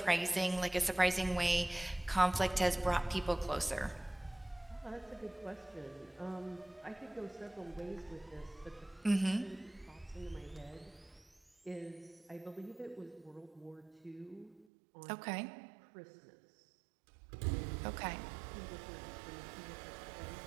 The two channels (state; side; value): drops out; left; at 14.7 s